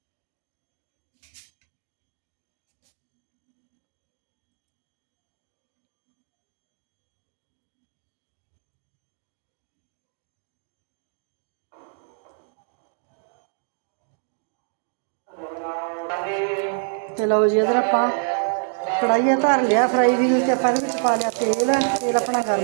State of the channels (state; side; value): silent; left; digital silence